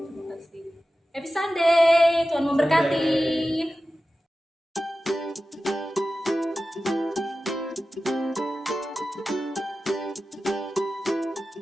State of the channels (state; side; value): normal; both; correlation 0.94